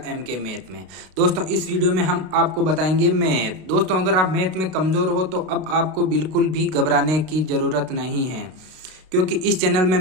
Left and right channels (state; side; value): late; left; 32 ms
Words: MK मैथ में। दोस्तों, इस वीडियो में हम आपको बताएंगे मैथ। दोस्तों, अगर आप मैथ में कमज़ोर हो तो अब आपको बिल्कुल भी घबराने की ज़रूरत नहीं है, क्योंकि इस चैनल में